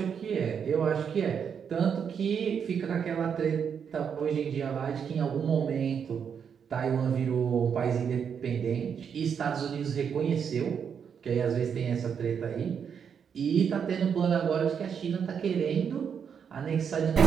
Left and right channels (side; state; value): left; quieter; 7.3 dB